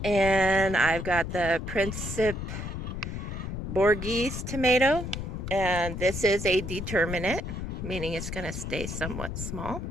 And I've got the Principe Borghese tomato, and this is a determinate, meaning it's going to stay somewhat small.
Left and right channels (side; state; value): left; noise; rumble, 6 dB below the sound